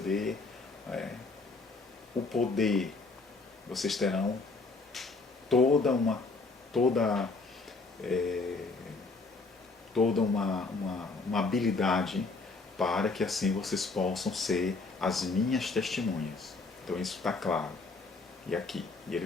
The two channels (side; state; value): right; quieter; 3.8 dB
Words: o poder. Vocês terão toda uma habilidade para que assim vocês possam ser as minhas testemunhas. Então isso está claro. E aqui, e